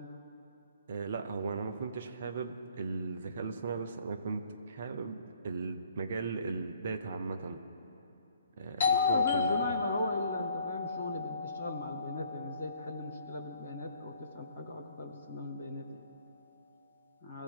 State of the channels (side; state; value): both; inverted; correlation -0.60